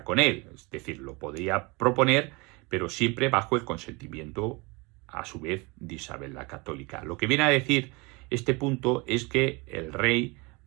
con él. Es decir, lo podría proponer, pero siempre bajo el consentimiento, a su vez, de Isabel la Católica. Lo que viene a decir este punto es que el rey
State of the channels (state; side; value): quieter; left; 26.8 dB